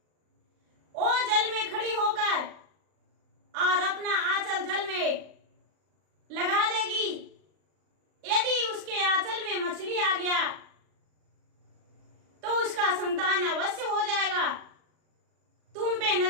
वो जल में खड़ी होकर और अपना आंचल जल में लगा देगी। यदि उसके आंचल में मछली आ गया तो उसका संतान अवश्य हो जाएगा। तुम पे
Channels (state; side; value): late; left; 39 ms